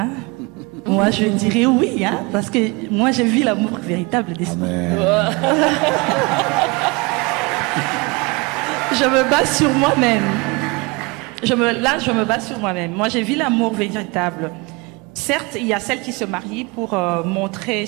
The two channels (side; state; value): left; quieter; 27.1 dB